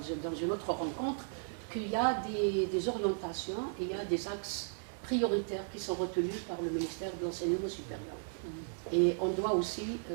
une autre rencontre qu'il y a des orientations et il y a des axes prioritaires qui sont retenus par le ministère de l'Enseignement supérieur. Et on doit aussi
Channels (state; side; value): silent; left; 54 dB below the other